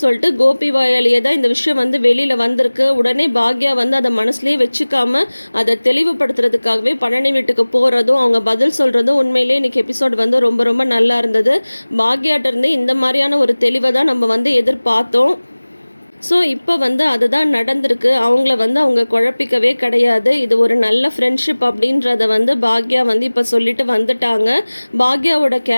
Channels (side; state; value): both; inverted; correlation -1.00